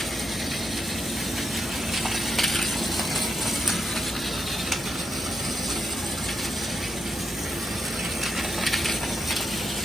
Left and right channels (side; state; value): both; normal; correlation 0.83